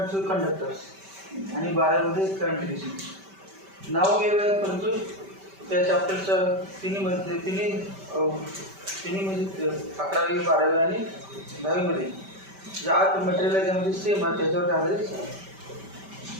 थ्रू कंडक्टर्स आणि 12वीमध्ये करंट इलेक्ट्रिसिटी. नाव वेगळं आहे परंतु त्या चॅप्टरच्या तिन्ही म्हणजे 11वी 12वी आणि 10वीमध्ये जे आत मटेरियल आहे त्यामध्ये सेम आहे, त्याच्यावर आधारित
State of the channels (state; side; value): late; left; 5.1 ms